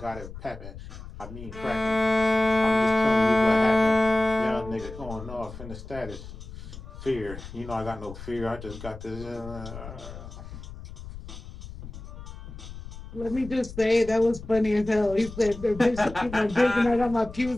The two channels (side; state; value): left; noise; rumble, 13 dB below the sound